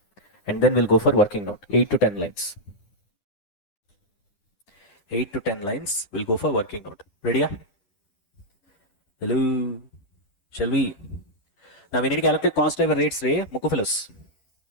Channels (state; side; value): late; right; 9.9 ms